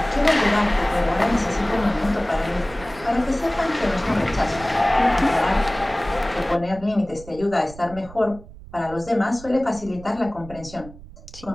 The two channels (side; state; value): right; noise; rumble, 17 dB below the sound